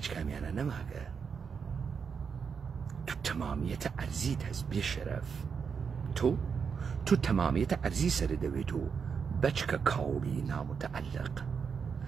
کامیانە نەماگە. تو تەمامیەتە ئەرزیت هەست بێ شەرەف. تۆ تەمامیەتە ئەرزی سەر دەوێت و بەچکە کاوڵی نامتەعەلق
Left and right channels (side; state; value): left; quieter; 6.2 dB